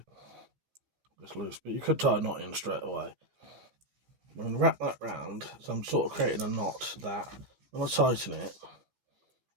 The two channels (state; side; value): late; left; 15 ms